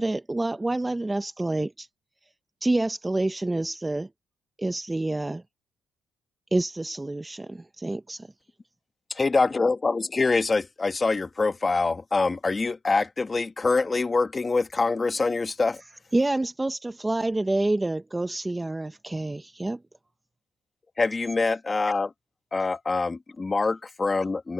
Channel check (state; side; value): normal; both; correlation 0.96